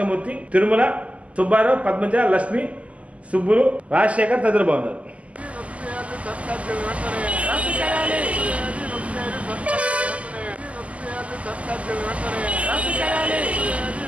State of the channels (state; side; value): late; left; 0.066 ms